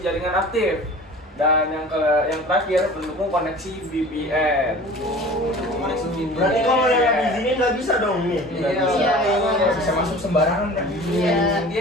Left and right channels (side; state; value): both; normal; correlation 0.41